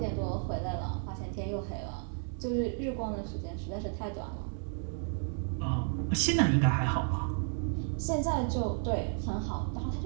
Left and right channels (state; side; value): silent; left; 56 dB below the other